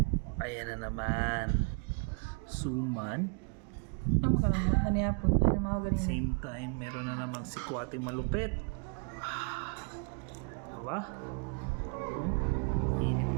Ayan na naman. Suman. Ano ka naman? Ano yapon? Ano mga ganyan? Same time, meron na namang sikwating malupit. Diba? Oh, init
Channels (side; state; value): left; quieter; 37.8 dB